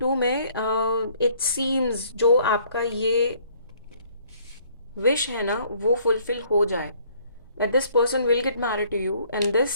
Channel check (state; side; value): inverted; both; correlation -0.61